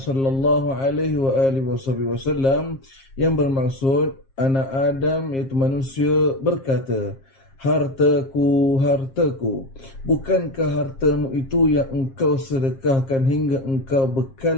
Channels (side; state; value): right; late; 7.5 ms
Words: alaihi wa alihi wasallam yang bermaksud anak Adam iaitu manusia berkata, hartaku, hartaku, bukankah hartamu itu yang engkau sedekahkan hingga engkau